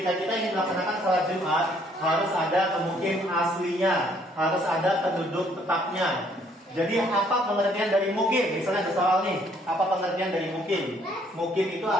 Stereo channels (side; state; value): both; normal; correlation 0.64